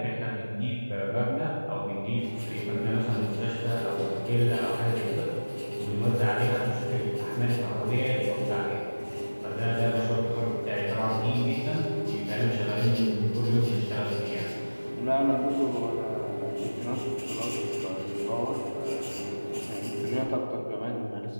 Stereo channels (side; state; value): both; inverted; correlation -1.00